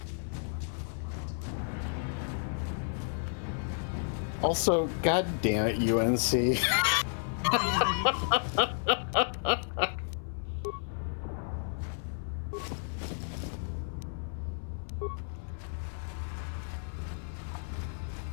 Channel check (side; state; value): right; silent; 56 dB below the other